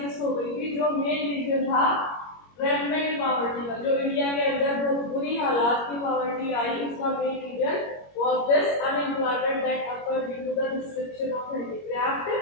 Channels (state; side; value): late; right; 21 ms